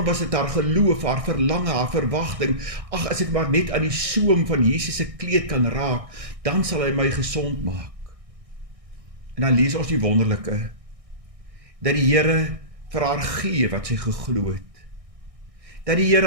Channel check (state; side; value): late; left; 1.6 ms